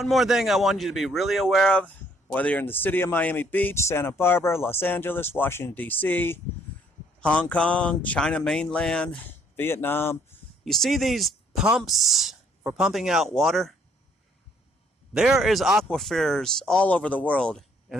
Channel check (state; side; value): normal; both; correlation 0.64